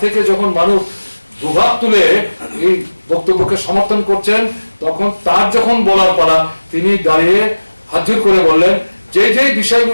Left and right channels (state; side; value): inverted; both; correlation -1.00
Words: থেকে যখন মানুষ দুভাগ তুলে এই বক্তব্যকে সমর্থন করছেন, তখন তার যখন বলার পালা, তিনি দাঁড়িয়ে হাতজোড় করে বললেন, যে যে